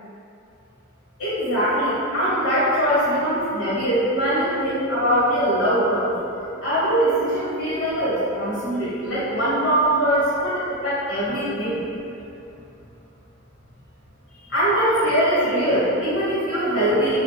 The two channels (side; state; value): both; normal; correlation 0.07